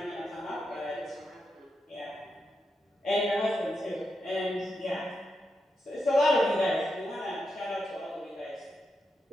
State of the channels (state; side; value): normal; both; correlation 0.85